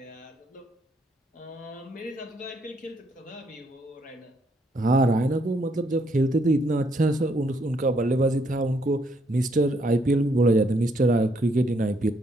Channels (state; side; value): normal; both; correlation 0.72